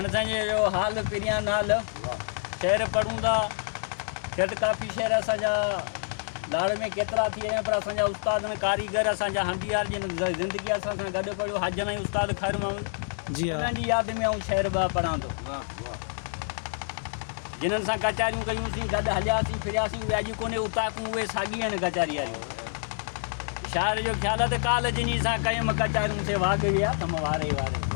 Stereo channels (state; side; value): silent; right; digital silence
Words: असांजे जो हाल पिरियां नाल शहर पढ़ूं था झटि काफ़ी शहर असांजा लाड़ में केतिरा थी विया आहिनि, पर असांजा उस्ताद कारीगर असांजा हंडियार जिन ज़िंदगी असां सां गॾु पढ़ियो हजन ऐं उस्ताद ख़ैर महमूद जी हाँ, उन्हनि जी यादि में ऐं शहर ॿ पढ़ां थो। जिन्हनि सां कचारियूं कयूंसीं, गॾु हलियासीं फिरियासीं, उहे अॼु कोन्हे उताकूं, उहे साॻी आहिनि कचारी वारियूं। शाइर जो ख़्यालु आहे त काल जिनी सां कयुमि कचारियूं से वाग विया तम वारे वारे।